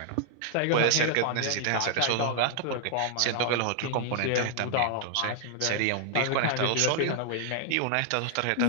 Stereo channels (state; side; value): different; both; correlation -0.01